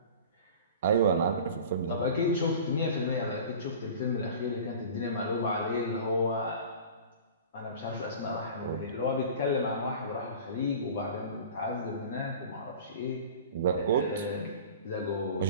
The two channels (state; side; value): inverted; both; correlation -0.38